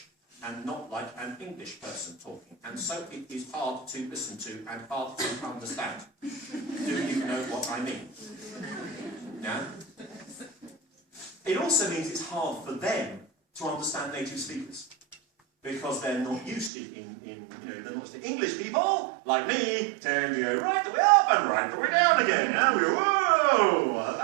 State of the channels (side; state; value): left; drops out; at 16.7 s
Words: and not like an English person talking. And so it is hard to listen to and hard to understand. Do you know what I mean? Yeah? It also means it's hard for them to understand native speakers, because they're not used to they're not used to English people, like me, tend to go right the way up and right the way down again. Yeah? We go, whoa! Well,